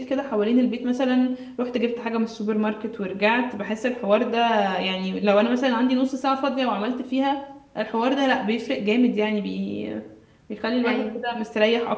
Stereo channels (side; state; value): both; identical; correlation 1.00